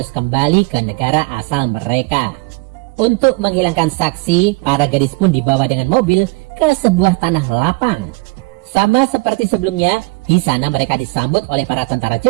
kembali ke negara asal mereka. Untuk menghilangkan saksi, para gadis pun dibawa dengan mobil ke sebuah tanah lapang. Sama seperti sebelumnya, di sana mereka disambut oleh para tentara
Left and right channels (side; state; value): left; quieter; 26.4 dB